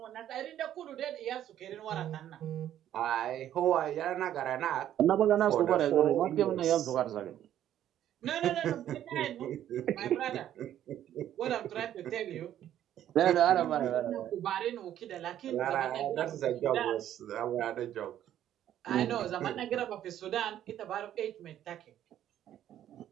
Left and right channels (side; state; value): left; quieter; 11.4 dB